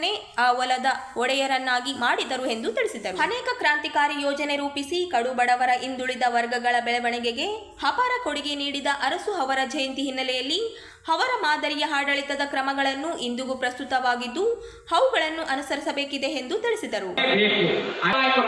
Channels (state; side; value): identical; both; correlation 1.00